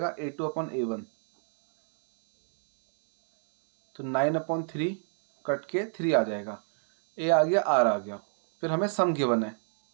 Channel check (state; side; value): silent; left; digital silence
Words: A2/A1, तो 9/3 कट के 3 आ जाएगा, ए आ गया आर आ गया। फिर हमें सम गिवन है